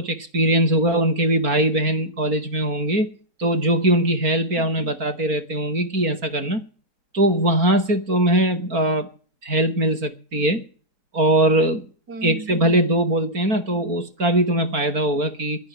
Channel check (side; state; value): left; late; 4.4 ms